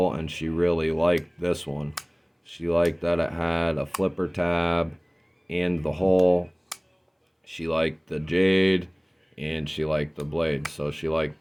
and she really liked this one. She liked that it had a flipper tab and the hole. She liked the jade and she liked the blade, so she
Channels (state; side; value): identical; both; correlation 1.00